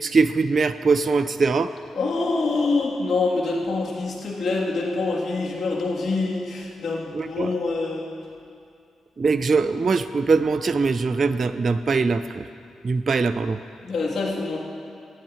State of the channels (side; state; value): both; normal; correlation 0.86